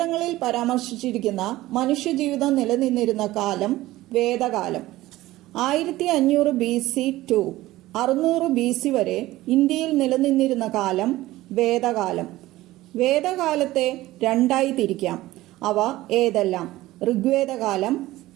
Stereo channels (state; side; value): quieter; left; 16.9 dB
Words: പരാമർശിച്ചിരിക്കുന്ന മനുഷ്യജീവിതം നിലനിന്നിരുന്ന കാലം വേദകാലം. 1500 BC to 600 BC വരെ ഇന്ത്യയിൽ നിലനിന്നിരുന്ന കാലം വേദകാലം. വേദകാലത്തെ രണ്ടായി തിരിക്കാം. അവ ഏതെല്ലാം? ഋഗ്വേദകാലം,